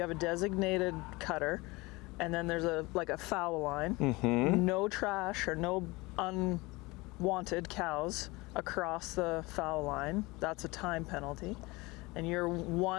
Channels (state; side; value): quieter; right; 23.2 dB